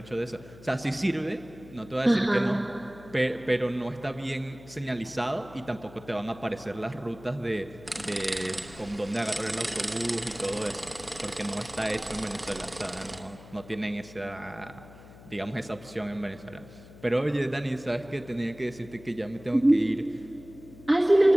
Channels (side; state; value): left; noise; hum, 19 dB below the sound